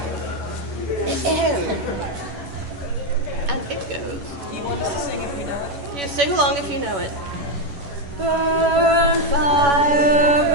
am. And it goes. You want us to sing if we know it? You sing along if you know it. Burn fire,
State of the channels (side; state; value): left; late; 11 ms